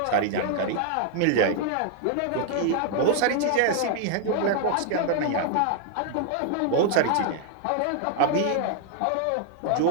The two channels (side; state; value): both; different; correlation 0.00